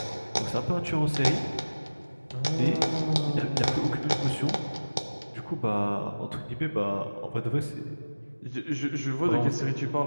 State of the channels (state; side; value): inverted; both; correlation -1.00